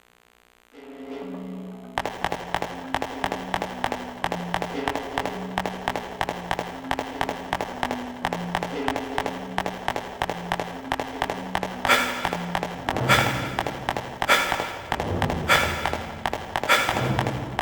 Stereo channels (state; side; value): identical; both; correlation 1.00